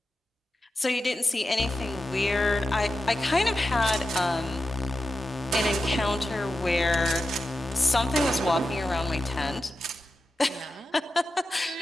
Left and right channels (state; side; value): normal; both; correlation 0.90